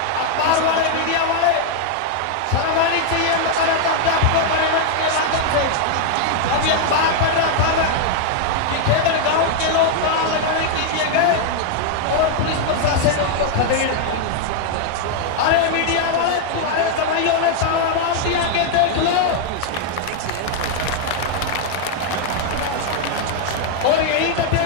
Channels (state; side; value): different; both; correlation 0.00